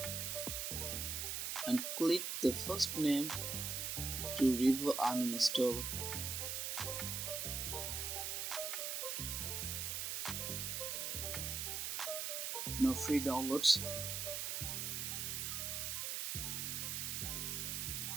And click the first name to Revo Uninstall. Now free downloads.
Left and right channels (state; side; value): noise; right; hiss, 2 dB below the sound